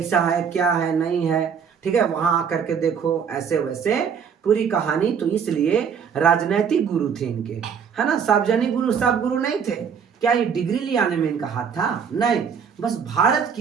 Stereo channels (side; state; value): left; quieter; 7.0 dB